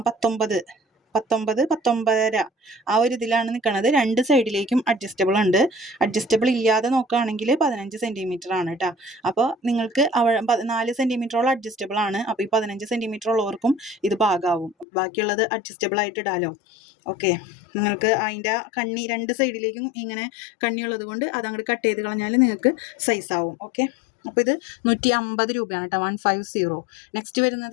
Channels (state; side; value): drops out; right; at 14.9 s